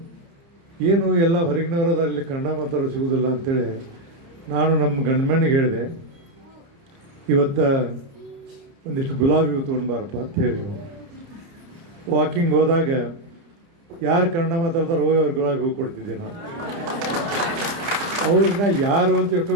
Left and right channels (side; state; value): left; late; 30 ms